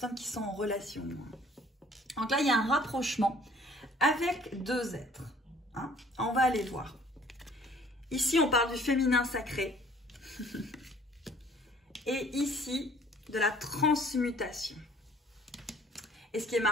qui sont en relation. Donc là, il y a un rapprochement avec 2 êtres. Hein. On va aller voir. Ici, on parle du féminin sacré. Et ici, de la transmutation. Et ce qui est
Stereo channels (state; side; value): normal; both; correlation 0.56